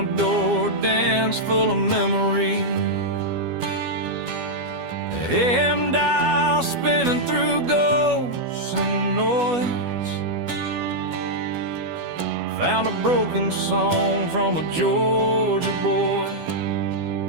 door, dance full of memory. AM dial spinning through ghosts and noise. Found a broken song from a Georgia boy.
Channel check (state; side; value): late; left; 12 ms